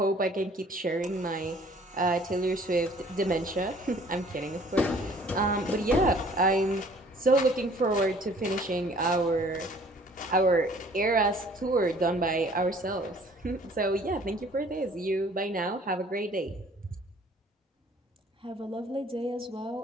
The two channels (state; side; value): normal; both; correlation 0.55